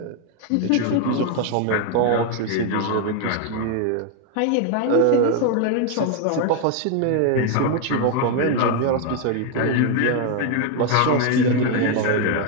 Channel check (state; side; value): different; both; correlation 0.00